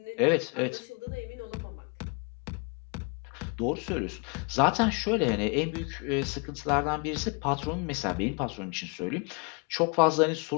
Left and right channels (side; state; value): right; quieter; 31.9 dB